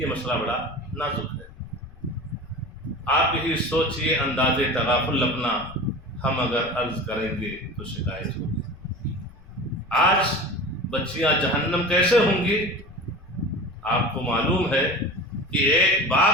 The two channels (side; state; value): left; noise; rumble, 21 dB below the sound